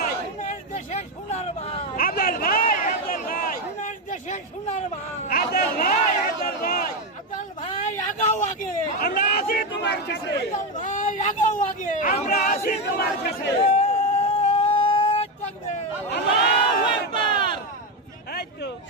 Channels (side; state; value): both; normal; correlation 0.10